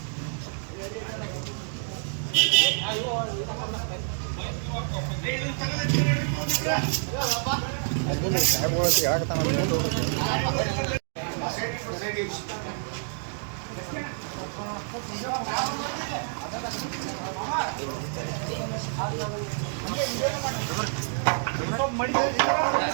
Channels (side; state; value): left; silent; 59 dB below the other